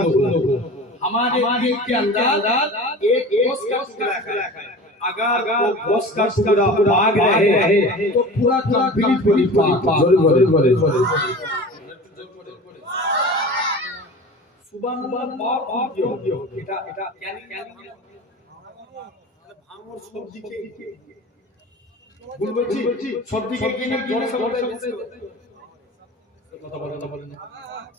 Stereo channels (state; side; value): normal; both; correlation 0.36